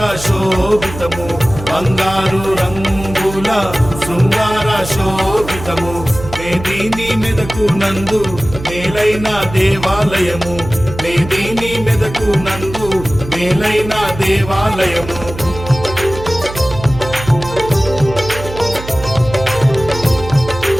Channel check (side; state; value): right; noise; hum, 11 dB below the sound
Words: శోభితము, బంగారు రంగుల శృంగార శోభితము. మేదిని మెదకు నందు మేలైన దేవాలయము, మేదిని మెదకు నందు మేలైన దేవాలయము.